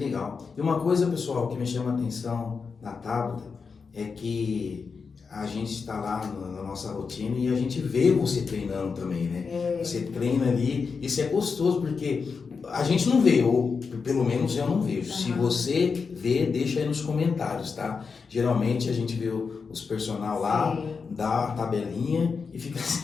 E uma coisa, pessoal, que me chama a atenção na Tabata é que a gente está lá na nossa rotina e a gente vê você treinando também, né? Você treina ali, isso é gostoso porque a gente não vê, ou pelo menos eu não vejo. Se você vê, deixa aí nos comentários, tá? Geralmente a gente vê os personal lá, dá a tabelinha e fica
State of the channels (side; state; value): right; quieter; 5.2 dB